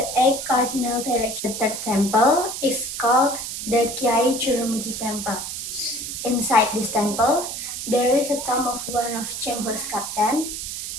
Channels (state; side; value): noise; right; hiss, 6 dB below the sound